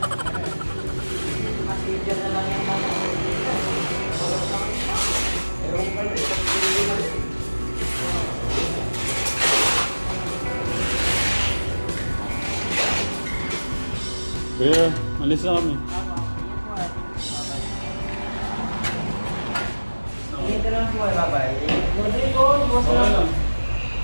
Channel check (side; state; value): both; inverted; correlation -1.00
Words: Kuya, alis na kami. Dito lang po, bye-bye. Good po, boss Okay lang. lang.